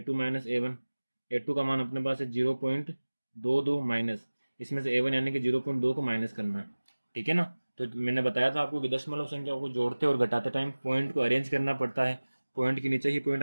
- A1। A2 का मान अपने पास है 0.22 माइनस इसमें से A1 यानी कि 0.2 को माइनस करना है। ठीक है ना। तो मैंने बताया था आपको कि दशमलव संख्या को जोड़ते और घटाते टाइम पॉइंट को अरेंज करना पड़ता है, पॉइंट के नीचे ही पॉइंट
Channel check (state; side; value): inverted; both; correlation -1.00